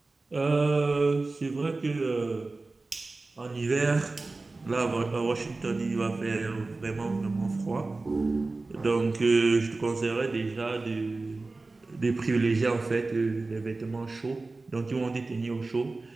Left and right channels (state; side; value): quieter; left; 3.4 dB